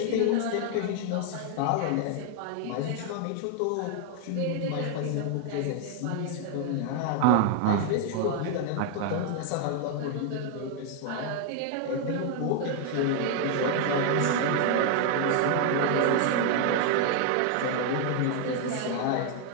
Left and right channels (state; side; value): different; both; correlation 0.00